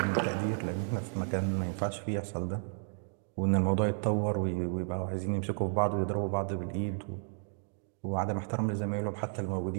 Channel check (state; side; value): silent; left; 56 dB below the other